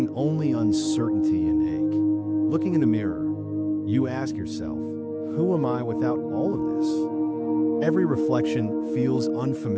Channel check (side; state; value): both; identical; correlation 1.00